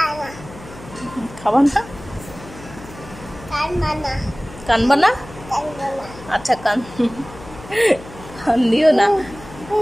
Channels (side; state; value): left; noise; hum, 17 dB below the sound